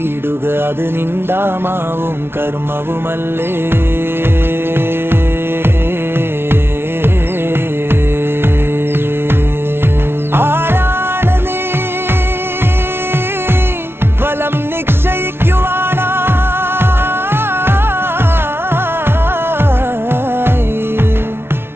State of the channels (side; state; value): left; late; 0.12 ms